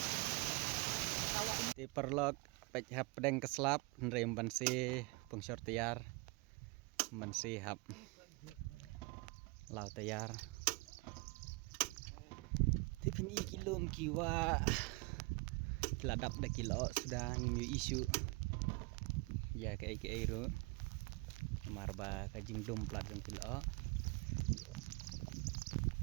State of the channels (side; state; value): left; quieter; 27.0 dB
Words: Di perlok pek hap pedeng keslap nrem bansi pungsor tiar bansi hap lau tiar tipin kilom kiwa kiladap dah kilo sudah ngimi isu ya ke ro marba kajing dom plat jang kilo